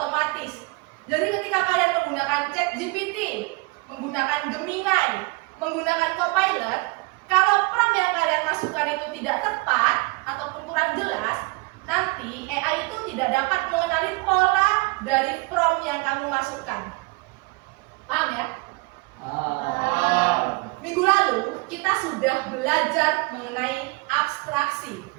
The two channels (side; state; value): left; quieter; 26.1 dB